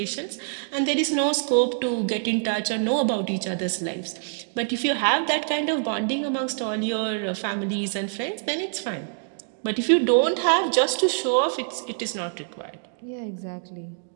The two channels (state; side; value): silent; left; digital silence